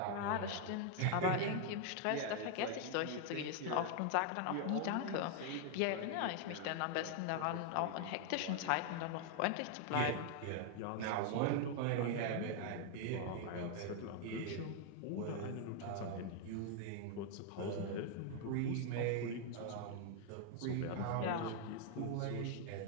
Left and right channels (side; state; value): both; different; correlation 0.00